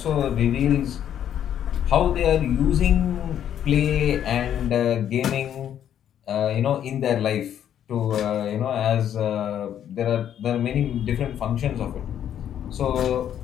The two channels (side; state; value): right; quieter; 10.0 dB